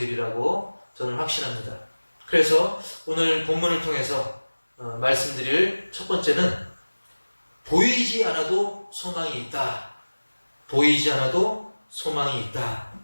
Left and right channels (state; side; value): inverted; both; correlation -1.00